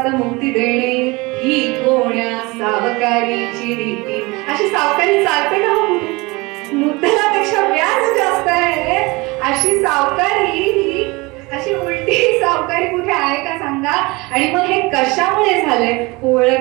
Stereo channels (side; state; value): left; quieter; 24.4 dB